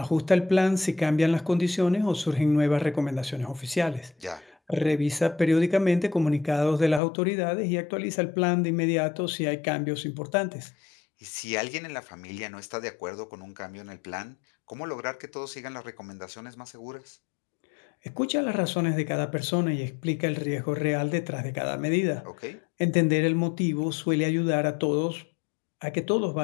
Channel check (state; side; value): drops out; right; at 7.0 s